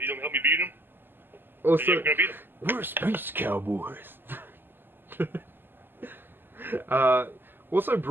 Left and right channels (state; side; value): late; left; 0.095 ms